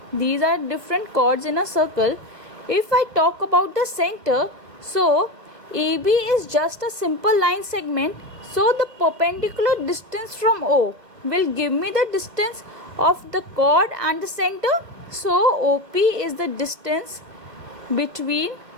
these are different chords in a circle. If I talk about the center, so AB is just a simple line segment. So the perpendicular distance from O will give me the distance of the chord and the center. So OP is the distance between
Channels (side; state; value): left; late; 1.4 ms